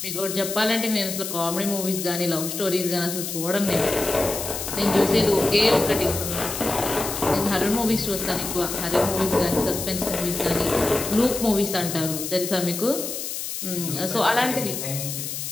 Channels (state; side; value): noise; left; hiss, 5 dB below the sound